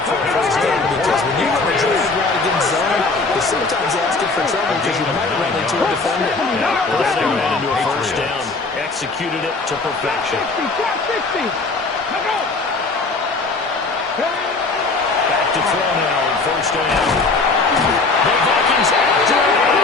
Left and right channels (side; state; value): right; quieter; 3.8 dB